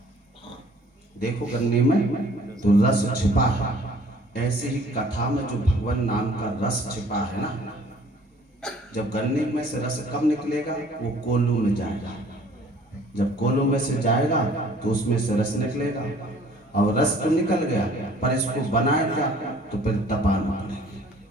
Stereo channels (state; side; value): normal; both; correlation 0.55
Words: देखो गन्ने में तो रस छिपा है, ऐसे ही कथा में जो भगवान नाम का रस छिपा है ना, जब गन्ने में से रस कब निकलेगा, वो कोल्हू में जाएगा। जब कोल्हू में से जाएगा तो उसमें से रस निकलेगा। और रस तो निकल गया, पर इसको बनाएगा तो फिर तपाना पड़ेगा।